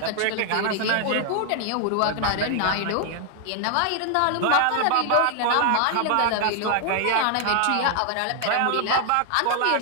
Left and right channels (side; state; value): both; different; correlation 0.00